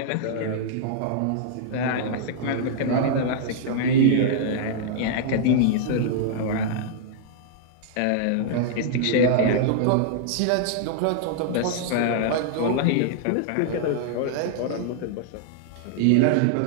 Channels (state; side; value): different; both; correlation -0.01